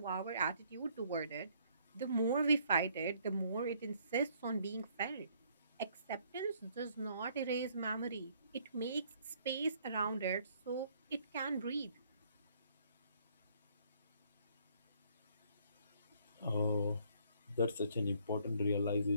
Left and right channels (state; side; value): inverted; both; correlation -0.64